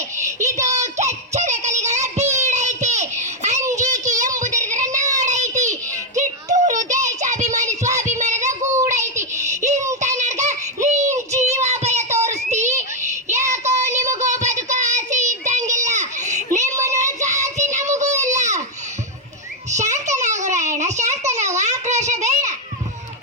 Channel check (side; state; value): both; normal; correlation -0.01